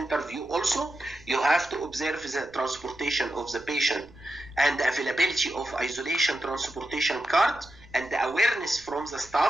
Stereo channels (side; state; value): right; noise; rumble, 24 dB below the sound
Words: also. You have to observe the transportation of the patient and the availability of isolation transportation card and the awareness from the